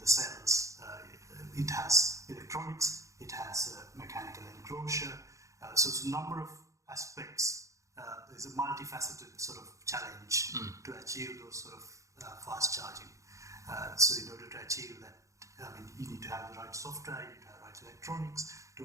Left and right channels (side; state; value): left; late; 0.15 ms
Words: cells. It has electronics, it has a mechanical enclosure. So it's a number of aspects. There's a multifaceted sort of challenge to achieve those sort of fast charging. So in order to achieve that, you need to have the right software, you need to have the right electronics to